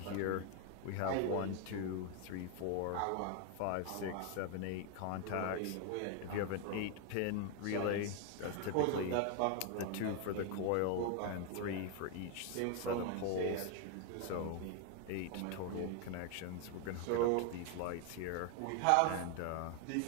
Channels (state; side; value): different; both; correlation 0.01